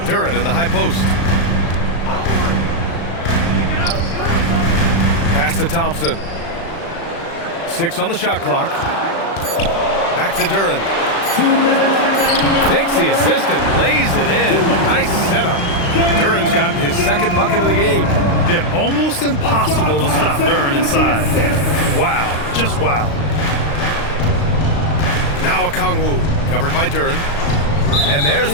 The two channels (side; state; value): right; late; 35 ms